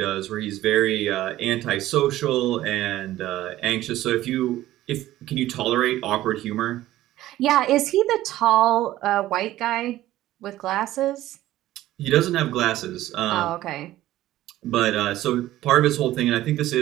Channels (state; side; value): quieter; left; 14.9 dB